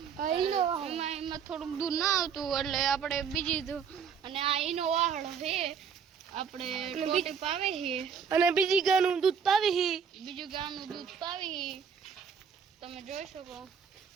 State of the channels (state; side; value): quieter; left; 6.9 dB